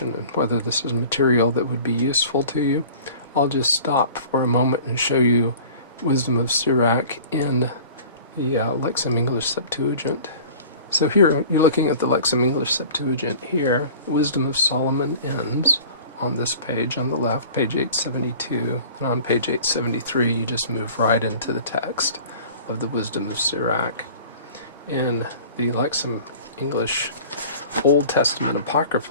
and whether this is material that would be useful to you. I'll just stop for a moment and show you Wisdom of Sirach in the Lexham English Septuagint. So here, you're looking at the Lexham English Septuagint here. Wisdom of Solomon ends on this page on the left, page 872, and on page 873 you just move right into the text of the Wisdom of Sirach. In the Lexham English Old Testament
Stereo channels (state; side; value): inverted; both; correlation -0.43